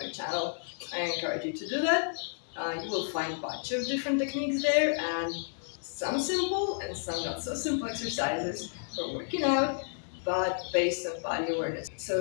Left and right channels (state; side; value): silent; right; 57 dB below the other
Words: my channel, I encourage you to do that. You will find a bunch of different techniques there, and some simple and some not so simple exercises for working out, but based on body awareness,